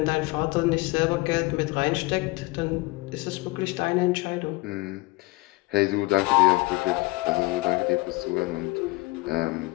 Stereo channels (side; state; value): right; quieter; 23.0 dB